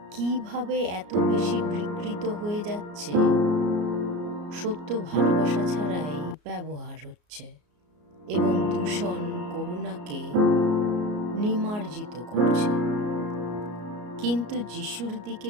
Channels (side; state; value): left; late; 33 ms